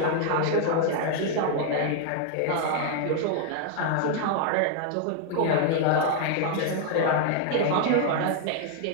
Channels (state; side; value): different; both; correlation 0.00